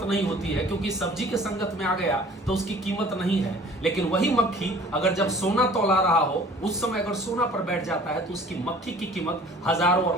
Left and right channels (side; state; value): both; normal; correlation 0.49